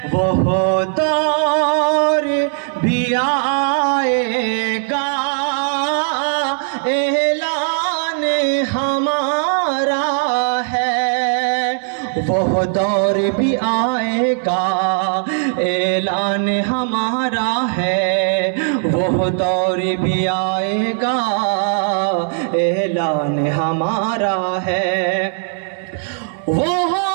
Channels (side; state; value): left; silent; digital silence